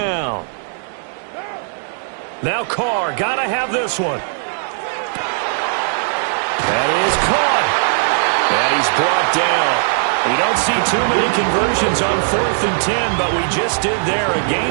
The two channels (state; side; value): silent; left; 67 dB below the other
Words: Now Carr, got to have this one. That is caught. And he's brought down. We don't see too many conversions on 4th and 10, but we just did there. A